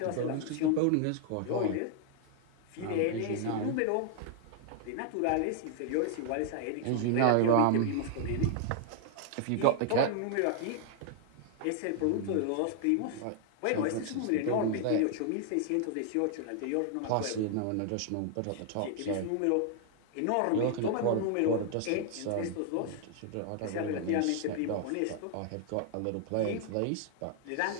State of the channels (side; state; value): both; different; correlation 0.00